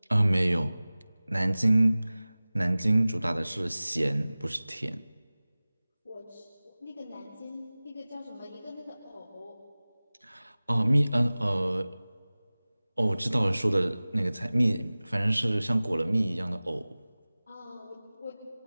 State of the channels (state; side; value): inverted; both; correlation -0.98